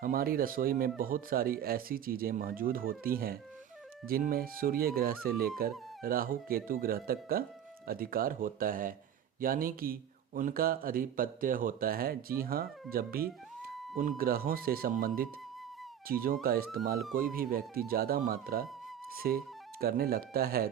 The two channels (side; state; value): left; quieter; 9.4 dB